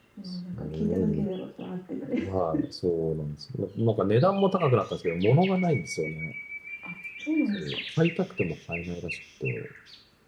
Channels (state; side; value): identical; both; correlation 1.00